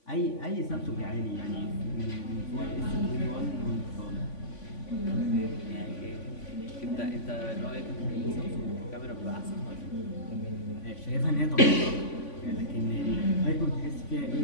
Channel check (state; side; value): late; right; 3.5 ms